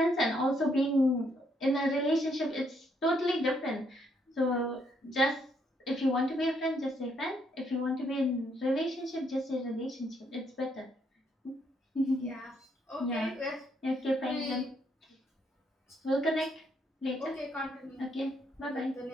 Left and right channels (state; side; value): normal; both; correlation 0.73